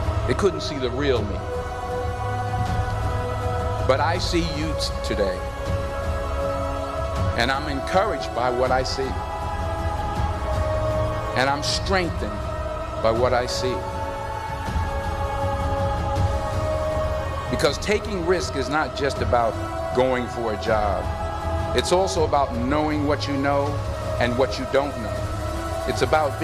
They couldn't see the real me. But I see you today, and I'm encouraged by what I see. And I'm strengthened by what I see. Because taking risk is not just about going for a job. It's also about knowing what you know and what you don't know. It's about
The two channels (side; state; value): both; identical; correlation 1.00